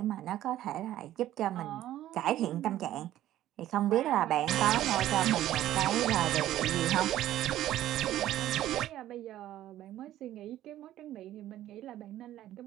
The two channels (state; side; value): quieter; left; 13.3 dB